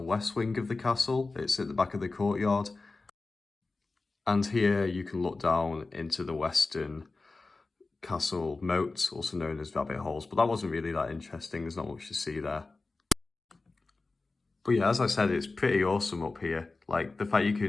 wing of the castle. It's at the back of the courtyard. And here you can look down into the western castle moat, also known as rabbit holes. But that wasn't really that interesting. There's not much to see there. But yeah, as I said, it's pretty awesome up here. Like, the fact you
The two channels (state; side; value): quieter; right; 3.6 dB